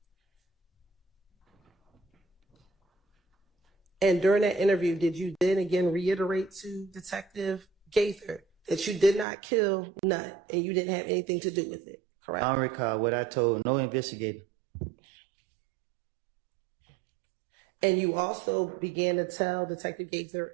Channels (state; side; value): drops out; left; at 9.2 s